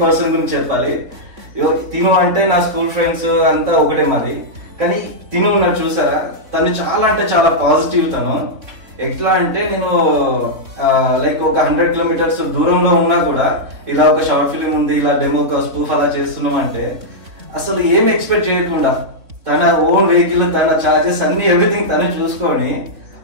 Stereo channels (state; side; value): late; left; 3.8 ms